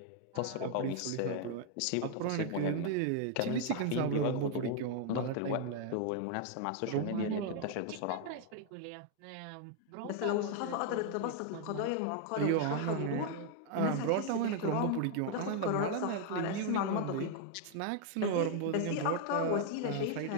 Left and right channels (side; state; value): both; different; correlation 0.00